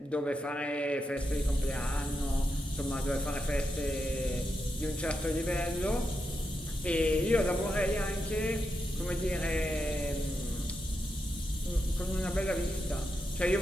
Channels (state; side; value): normal; both; correlation 0.86